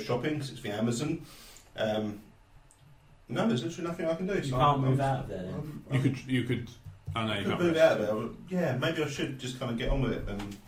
because it's the Amazon. No, there's literally nothing I can do. You can't move out of there then? You could. I know you could can't. move out of there. But yeah, maybe I should just kind of get on with it. And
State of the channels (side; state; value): both; identical; correlation 1.00